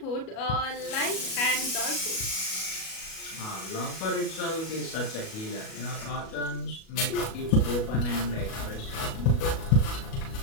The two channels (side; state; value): right; late; 37 ms